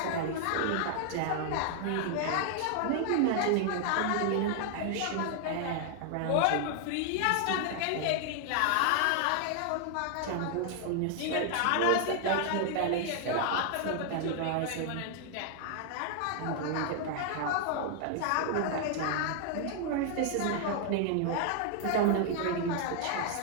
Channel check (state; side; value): different; both; correlation 0.00